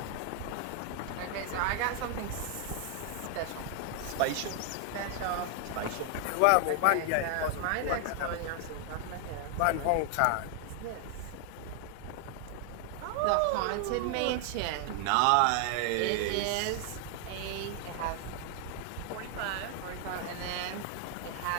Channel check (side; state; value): both; different; correlation 0.00